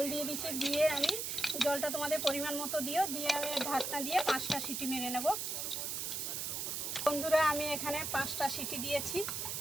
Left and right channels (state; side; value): noise; right; hiss, 2 dB below the sound